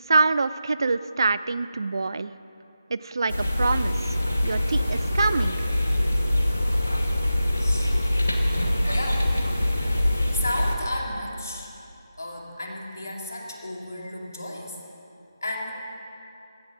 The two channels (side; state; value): both; inverted; correlation -0.91